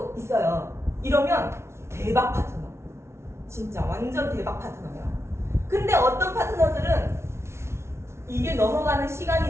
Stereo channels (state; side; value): late; left; 0.13 ms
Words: 있어요. 이러면 대박 파트너, 진짜 완전 대박 파트너예요. 근데 어떤 파트너들은 이게 넘어가는